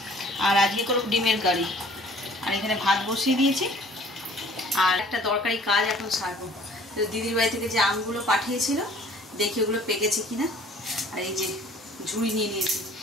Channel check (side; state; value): both; normal; correlation 0.53